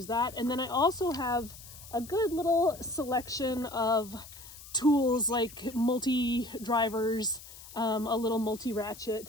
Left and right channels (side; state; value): left; noise; hiss, 17 dB below the sound